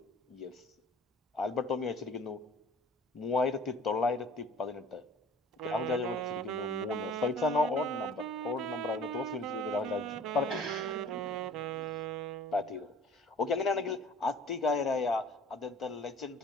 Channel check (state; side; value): normal; both; correlation 0.48